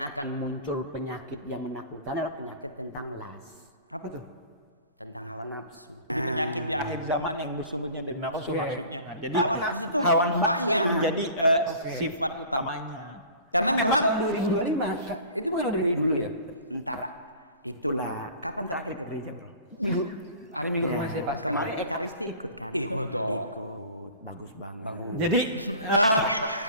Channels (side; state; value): both; inverted; correlation -0.43